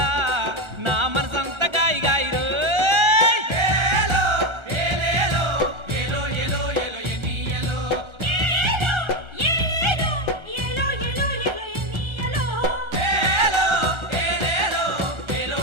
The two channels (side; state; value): left; late; 1.3 ms